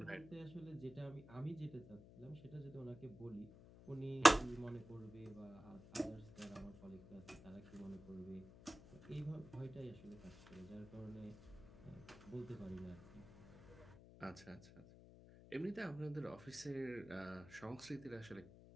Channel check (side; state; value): left; noise; hum, 17 dB below the sound